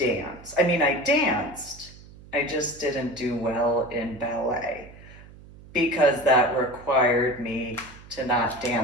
I mean, I danced, I just didn't do well in ballet because that required me to not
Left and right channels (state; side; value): noise; right; hum, 20 dB below the sound